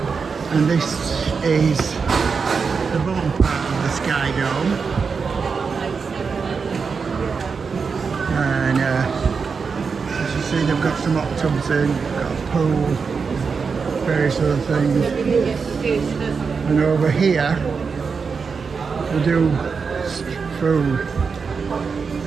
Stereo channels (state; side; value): quieter; left; 5.4 dB